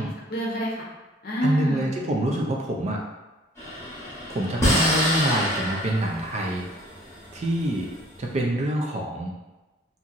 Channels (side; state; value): both; normal; correlation 0.58